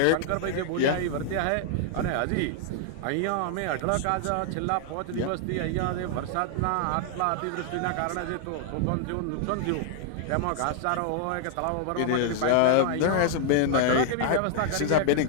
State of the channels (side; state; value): both; different; correlation -0.01